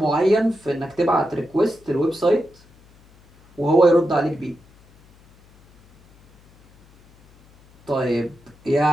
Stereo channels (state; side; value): noise; left; hum, 29 dB below the sound